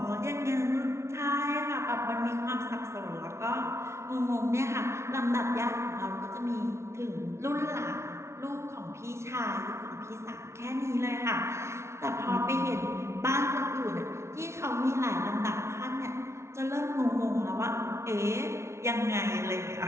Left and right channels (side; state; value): left; late; 0.13 ms